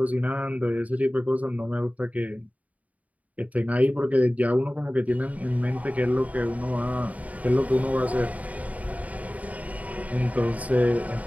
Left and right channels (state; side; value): late; left; 0.071 ms